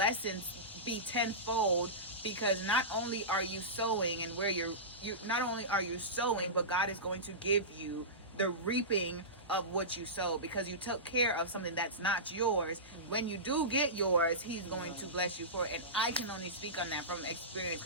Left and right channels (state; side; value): normal; both; correlation -0.19